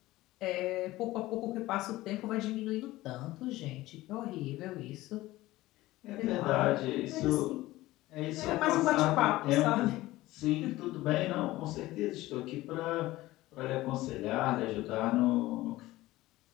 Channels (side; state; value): right; quieter; 17.6 dB